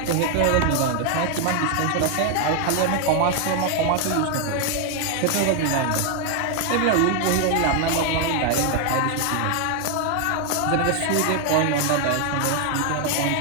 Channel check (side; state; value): both; different; correlation 0.00